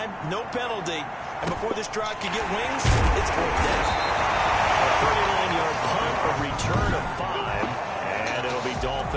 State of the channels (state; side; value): identical; both; correlation 1.00